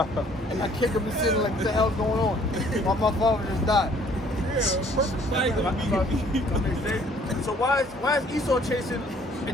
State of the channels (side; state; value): both; normal; correlation 0.59